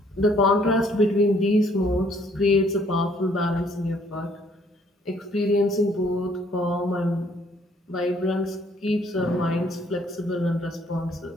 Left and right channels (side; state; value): both; normal; correlation 0.63